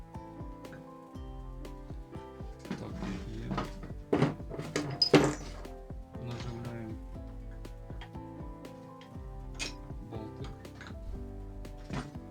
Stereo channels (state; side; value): identical; both; correlation 1.00